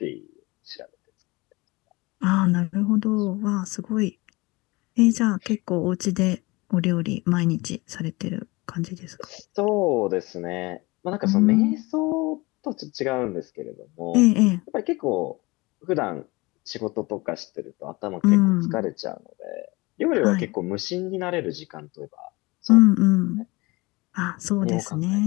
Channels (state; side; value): quieter; right; 23.5 dB